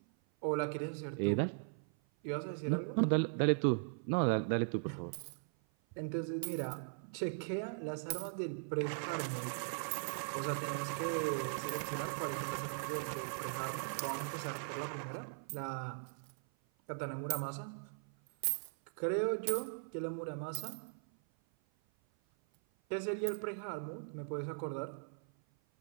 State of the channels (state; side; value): silent; left; 52 dB below the other